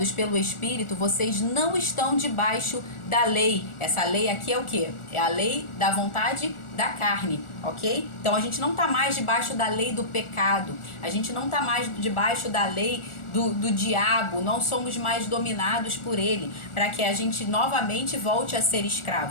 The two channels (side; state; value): right; late; 1.4 ms